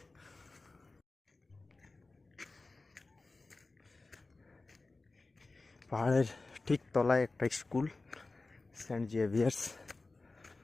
পাহাড়ের ঠিক তলায় একটা স্কুল, সেন্ট জেভিয়ার্স।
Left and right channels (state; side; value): quieter; right; 3.4 dB